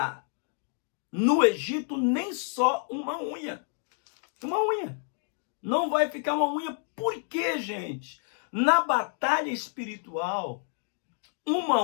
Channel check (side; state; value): right; silent; 59 dB below the other